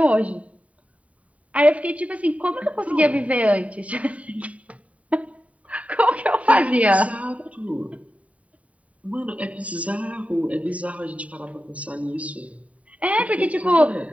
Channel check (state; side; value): late; left; 0.067 ms